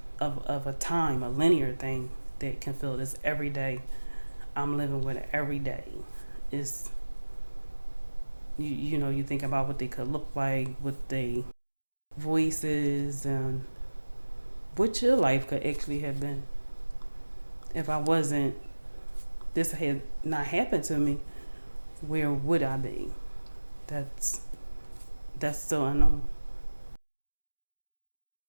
of a time, a linear thing that can fill this every day. I'm living with it every day. It's, you think about what they could look like, what they voices, and what your life could actually have been. If this had not happened to me, where would I be? That's still unknown.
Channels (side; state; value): both; inverted; correlation -1.00